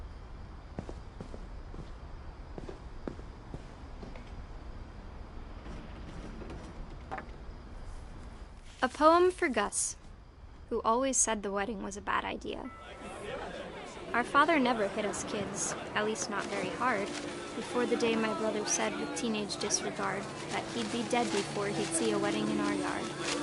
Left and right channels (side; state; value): both; identical; correlation 1.00